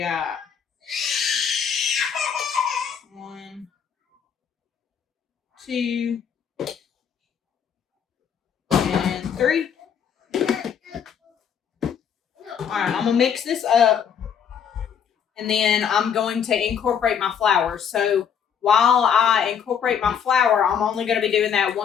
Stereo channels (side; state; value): right; quieter; 7.8 dB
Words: 1, 2, and 3. All right, I'm going to mix this up, and then I'm going to incorporate my flour. So while I incorporate my flour, I'm only going to be doing that